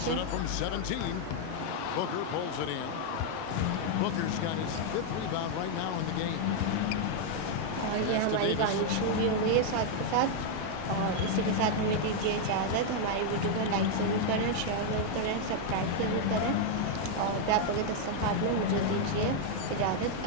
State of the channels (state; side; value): different; both; correlation 0.00